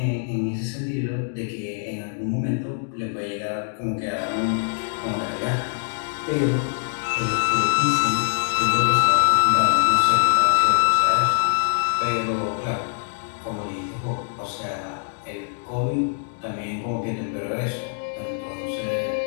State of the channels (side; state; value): right; silent; digital silence